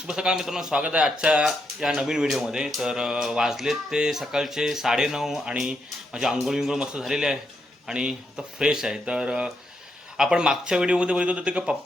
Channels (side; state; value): both; normal; correlation 0.81